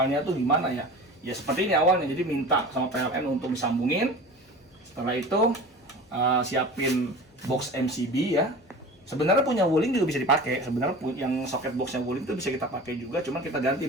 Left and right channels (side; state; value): both; normal; correlation 0.36